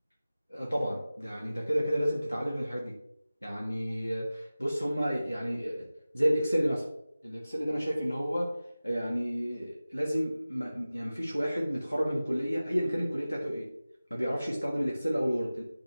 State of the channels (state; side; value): inverted; both; correlation -0.97